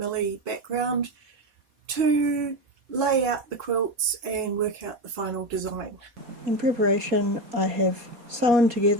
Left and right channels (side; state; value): left; late; 4.2 ms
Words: background to lay out the quilts and work out the final design. In preparation, I have sewn